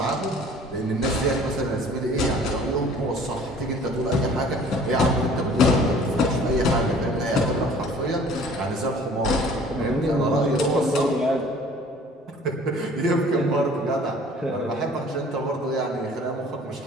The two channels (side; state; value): both; normal; correlation 0.51